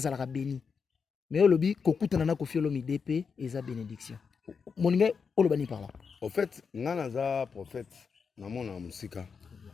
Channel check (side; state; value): right; quieter; 5.7 dB